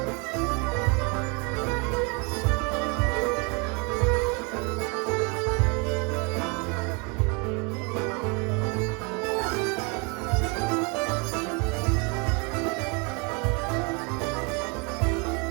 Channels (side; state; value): left; quieter; 31.8 dB